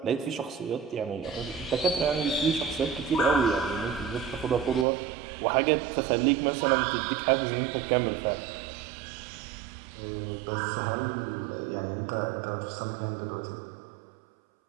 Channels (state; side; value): drops out; left; at 4.9 s